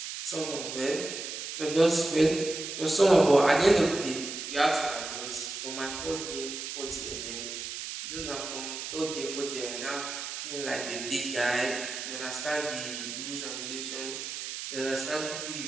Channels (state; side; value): noise; right; hiss, 6 dB below the sound